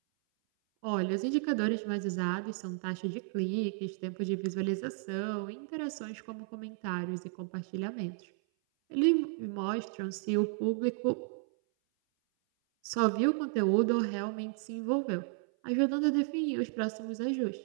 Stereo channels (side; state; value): left; silent; 56 dB below the other